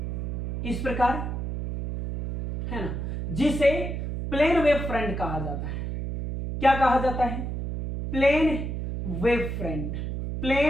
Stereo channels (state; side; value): noise; right; hum, 4 dB below the sound